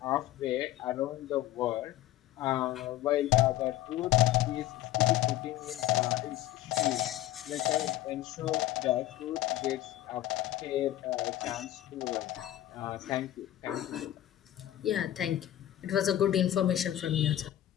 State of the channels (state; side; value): quieter; right; 13.6 dB